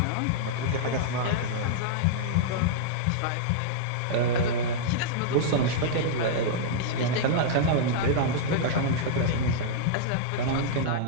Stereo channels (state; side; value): different; both; correlation -0.02